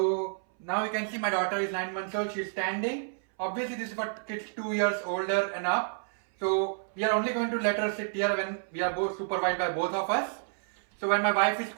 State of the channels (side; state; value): left; silent; 58 dB below the other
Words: now you can see my daughter is 9 months old. She's standing. Obviously this is for kids 2 years older and up. So we are only going to let her sit here when we are both supervised by both of us. So when my wife is